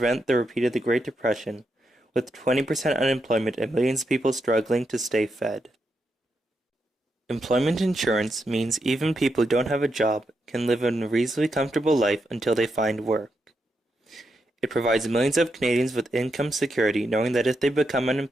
the repeat of the Great Depression, with 20% unemployment and millions of people struggling to stay fed. Employment insurance means even people who don't have a job can live a reasonably comfortable life until they find work. It provides millions of Canadians with income security, knowing that if they become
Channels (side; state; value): both; normal; correlation 0.83